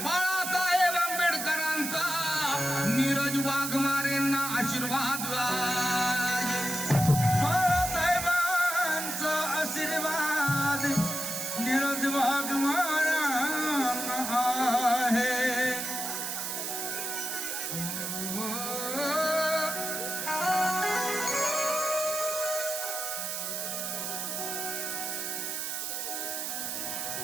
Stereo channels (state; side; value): noise; right; hiss, 3 dB below the sound